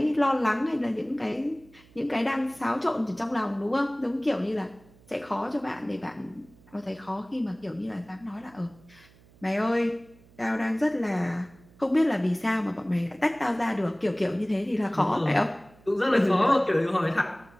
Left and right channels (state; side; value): noise; right; hum, 27 dB below the sound